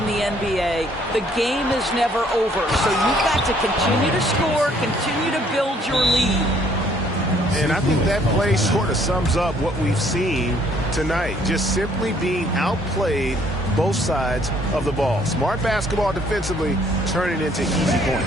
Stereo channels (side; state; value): both; normal; correlation 0.63